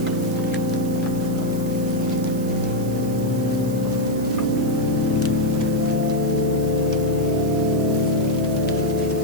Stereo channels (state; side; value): noise; right; hiss, 17 dB below the sound